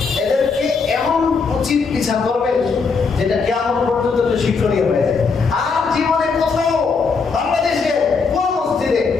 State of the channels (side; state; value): right; quieter; 4.9 dB